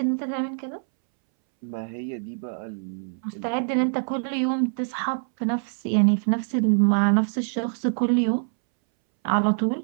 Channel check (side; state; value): left; silent; 62 dB below the other